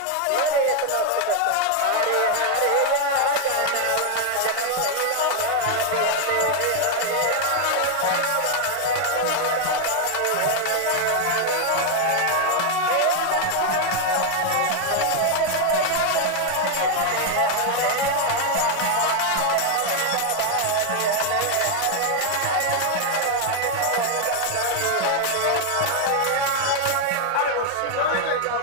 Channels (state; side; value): different; both; correlation 0.00